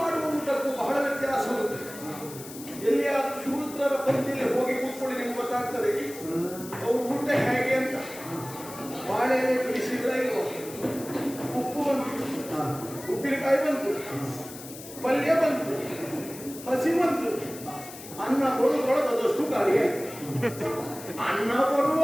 ಮಾಡುವ ಊಟಕ್ಕೂ ಬಹಳ ವ್ಯತ್ಯಾಸ ಉಂಟು. ಎಲ್ಲಿಯಾದ್ರೂ ಶೂದ್ರರ ಪಂಕ್ತಿಯಲ್ಲಿ ಹೋಗಿ ಕೂತ್ಕೊಳ್ಳಿ, ನಿಮ್ಗೆ ಗೊತ್ತಾಗ್ತದೆ ಅವ್ರ ಊಟ ಹೇಗೆ ಅಂತ. ಬಾಳೆ ಎಲೆ ಬಿಡಿಸಿದ್ರೆ ಇಲ್ವ, ಉಪ್ಪು ಬಂತು, ಉಪ್ಪಿನಕಾಯಿ ಬಂತು, ಪಲ್ಯ ಬಂತು, ಹಸಿ ಬಂತು, ಅನ್ನ ಬರುವುದರೊಳಗೆ ಅದಷ್ಟು ಖಾಲಿ ಆಯ್ತು. ಅನ್ನ ಬರುವ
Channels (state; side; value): noise; left; hiss, 14 dB below the sound